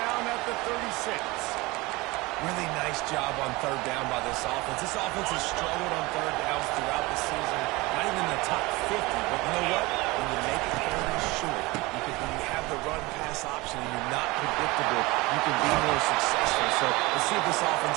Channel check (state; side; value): quieter; left; 22.5 dB